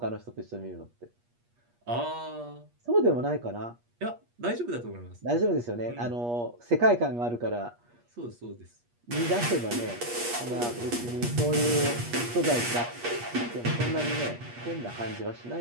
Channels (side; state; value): left; late; 8.4 ms